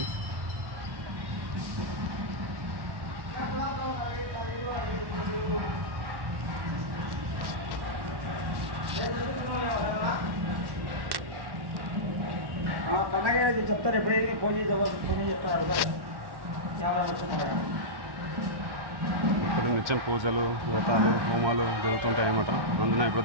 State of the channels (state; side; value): late; left; 1.1 ms